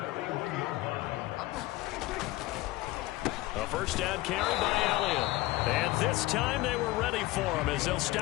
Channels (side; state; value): right; quieter; 18.5 dB